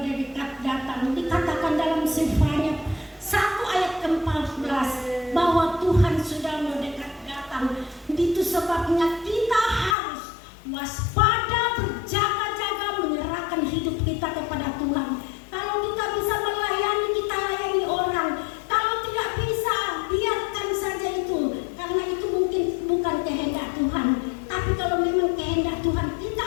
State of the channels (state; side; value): drops out; right; at 10.0 s